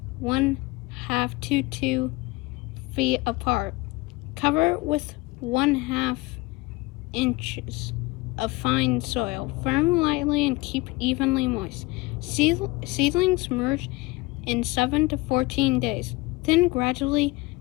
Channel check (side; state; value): right; quieter; 22.7 dB